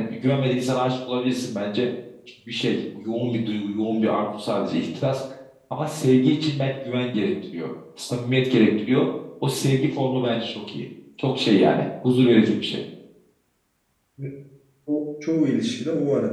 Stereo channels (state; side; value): identical; both; correlation 1.00